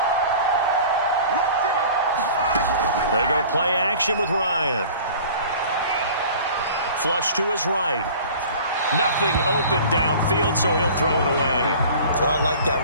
They go play action with Ryan. Flush to his right. Nothing open downfield, so he'll throw it away. So I like that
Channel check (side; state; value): both; inverted; correlation -0.44